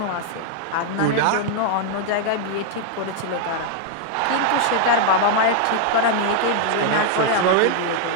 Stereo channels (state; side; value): different; both; correlation 0.00